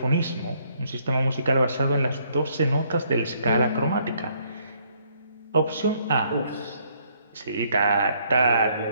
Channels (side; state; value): both; inverted; correlation -0.68